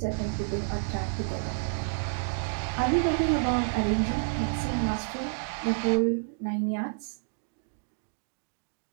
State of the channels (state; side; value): silent; left; digital silence